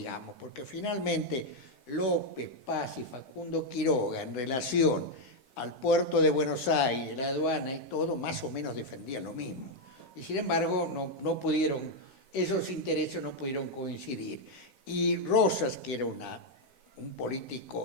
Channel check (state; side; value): late; right; 9.9 ms